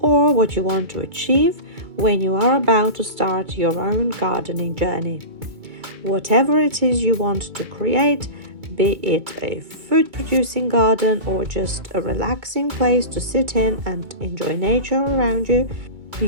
what you want to achieve when you are about to start your own gardening journey. Whatever it is you want to create, be it a food-producing garden or just a relaxing place to sit in and enjoy nature around you,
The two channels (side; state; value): left; late; 2.3 ms